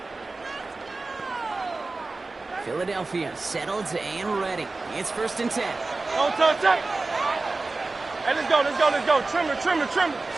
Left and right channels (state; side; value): quieter; left; 3.5 dB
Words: Philadelphia settled and ready. It's 1st and 10. Don't touch that. Hey, let's go, let's go, let's go. Trim it, trim it, trim it.